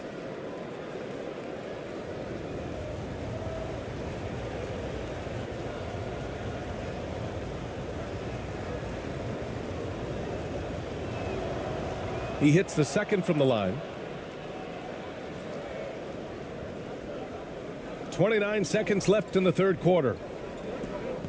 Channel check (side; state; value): both; identical; correlation 1.00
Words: He hits the second from the line. 29 seconds left in the third quarter.